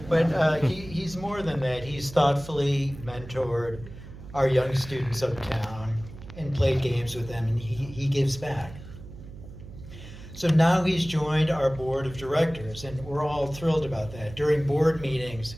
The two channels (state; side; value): noise; right; hum, 15 dB below the sound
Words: But he's more than that. He's thoughtfully mentored our young students uptown and played games with them, and he gives back. So now he's joined our board of directors, and we're all thrilled about that. During board meetings,